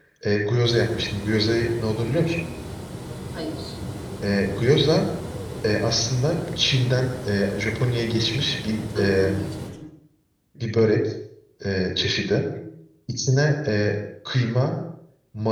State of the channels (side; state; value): both; identical; correlation 1.00